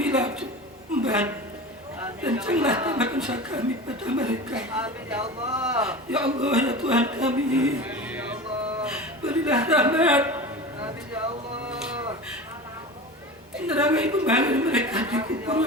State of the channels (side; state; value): both; normal; correlation 0.31